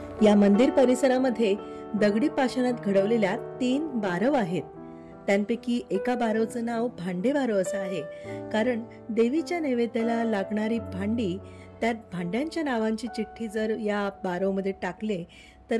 या मंदिर परिसरामध्ये दगडी पाषाणात घडवलेल्या 3 बारव आहेत. त्यांपैकी एका बारवचं नाव भांडे बारव असं आहे, कारण देवीच्या नैवेद्याला लागणारी भांडी, त्यात भांड्यांच्या नावांची चिठ्ठी जर या बारवमध्ये टाकले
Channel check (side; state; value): both; identical; correlation 1.00